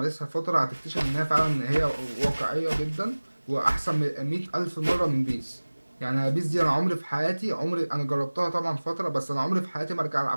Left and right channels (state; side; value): inverted; both; correlation -1.00